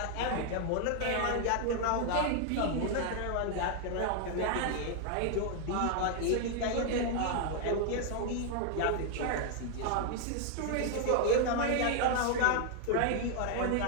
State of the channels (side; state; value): both; different; correlation 0.00